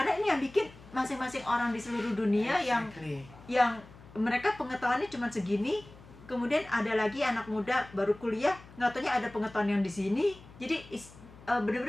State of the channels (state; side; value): noise; left; hum, 21 dB below the sound